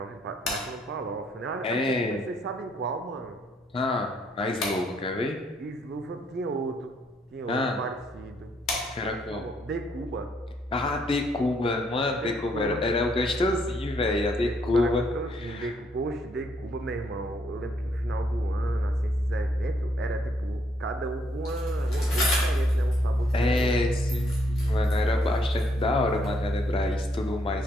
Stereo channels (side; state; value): both; normal; correlation 0.71